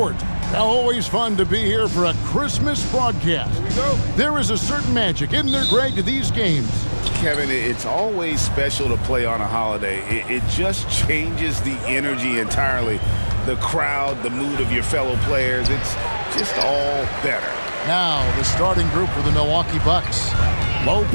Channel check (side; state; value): both; inverted; correlation -1.00